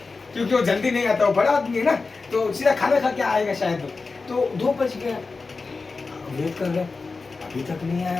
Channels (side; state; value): right; quieter; 4.1 dB